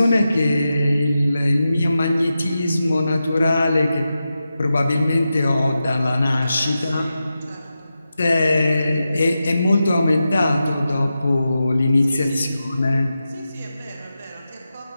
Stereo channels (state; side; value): inverted; both; correlation -0.91